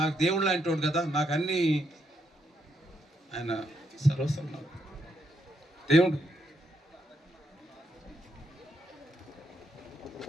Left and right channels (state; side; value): normal; both; correlation 0.78